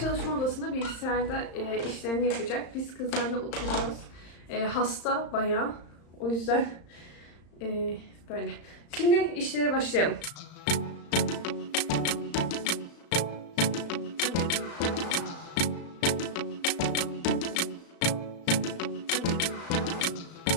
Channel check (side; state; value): right; late; 35 ms